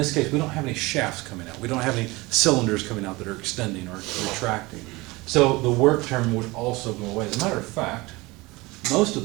case, we don't have any shafts coming out. We don't have any cylinders coming out that are extending or retracting. So the work term would also go away. As a matter of fact, most of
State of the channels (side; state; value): left; quieter; 22.5 dB